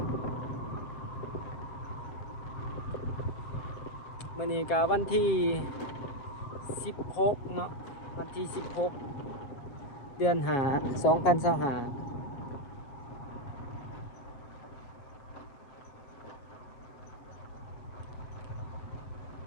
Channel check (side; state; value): right; late; 7.3 ms